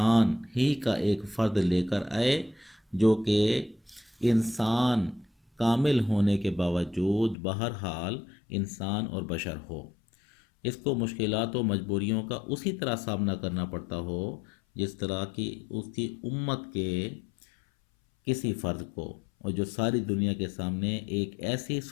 ہی کا ایک فرد لے کر آئے، جو کہ انسان کامل ہونے کے باوجود بہرحال انسان اور بشر ہو۔ اس کو مشکلات و مجبوریوں کا اسی طرح سامنا کرنا پڑتا ہو جس طرح کی اس کی امت کے کسی فرد کو، اور جو ساری دنیا کے سامنے ایک ایسی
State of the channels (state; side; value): drops out; right; at 7.4 s